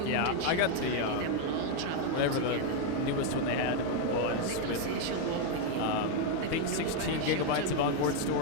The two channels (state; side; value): different; both; correlation 0.01